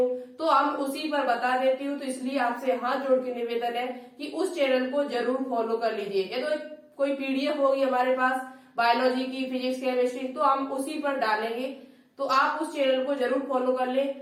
तो हम उसी पर बता देती हूँ, तो इसलिए आपसे हाथ जोड़ के निवेदन है कि उस चैनल को जरूर फॉलो कर लीजिए। या तो कोई पीडीएफ होगी हमारे पास बायोलॉजी की, फिजिक्स, केमिस्ट्री, तो हम उसी पर डालेंगे, तो आप उस चैनल को जरूर फॉलो कर ले।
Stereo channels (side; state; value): both; identical; correlation 1.00